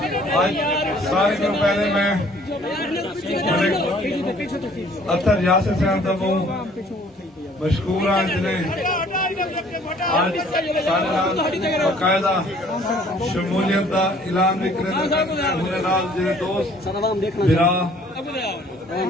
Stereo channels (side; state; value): both; normal; correlation 0.57